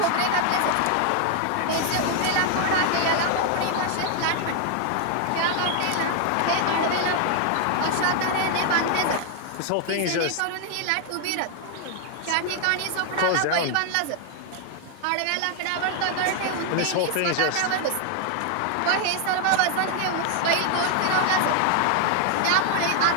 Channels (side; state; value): both; different; correlation 0.00